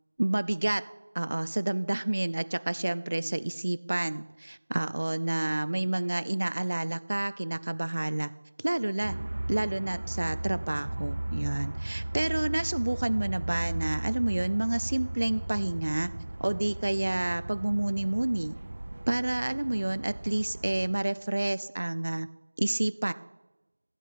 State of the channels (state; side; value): inverted; both; correlation -1.00